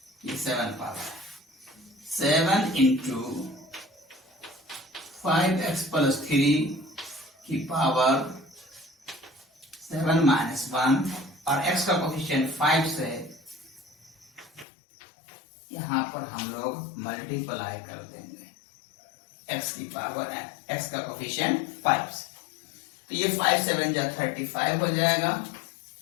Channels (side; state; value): right; drops out; at 14.7 s